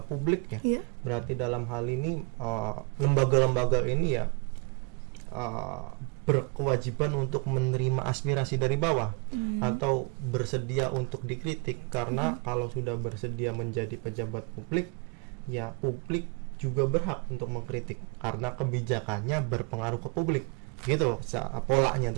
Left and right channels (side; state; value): left; quieter; 35.0 dB